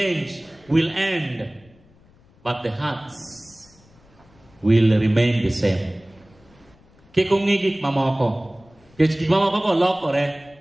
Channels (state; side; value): noise; left; rumble, 29 dB below the sound